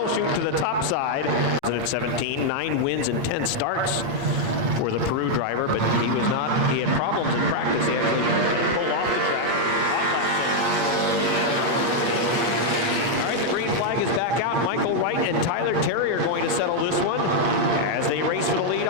shoot to the top side. 17, 9 wins and 10 starts for the Peru driver, but he had problems in practice. He had to pull off the track. All right, the green flag is back out. Michael Wright and Tyler Terry are going to settle this one as they race for the lead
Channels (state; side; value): late; left; 8.6 ms